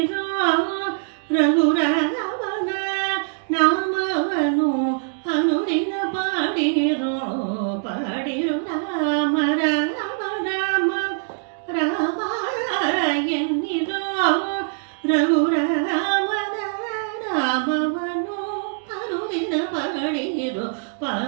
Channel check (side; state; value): left; silent; digital silence